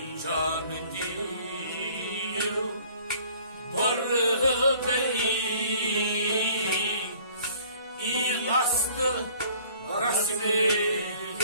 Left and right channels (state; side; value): inverted; both; correlation -0.54